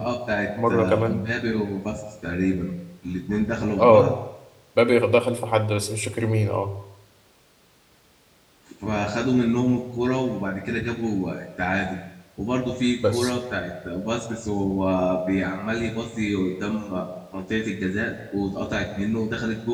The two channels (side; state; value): both; identical; correlation 1.00